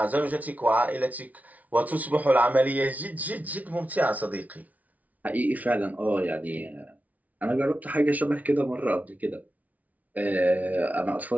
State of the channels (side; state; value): left; late; 0.072 ms